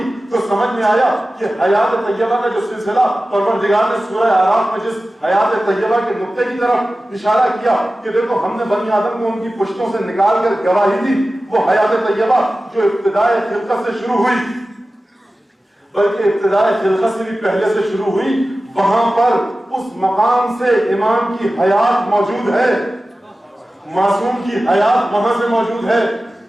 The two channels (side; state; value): both; normal; correlation 0.95